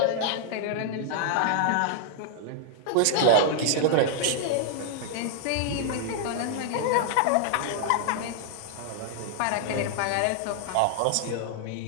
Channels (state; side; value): different; both; correlation -0.01